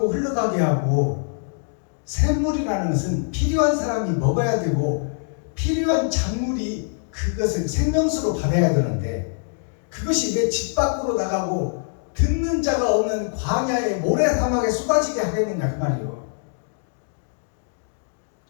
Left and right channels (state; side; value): silent; right; digital silence